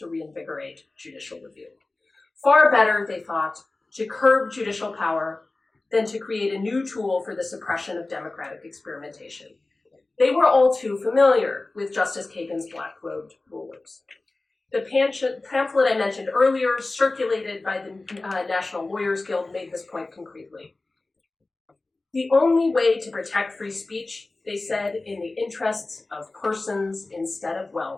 reinvigorate judicial review. Far better, they thought, to curb judicial power than to create a new tool for the suppression of democratic experimentation. They were all too familiar with Justice Kagan's black-robed rulers. The pamphlet I mentioned earlier, circulated by the National Lawyers Guild, made this point concretely. The only way to protect free speech, they said, in the interests of persons instead of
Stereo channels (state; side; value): quieter; right; 3.2 dB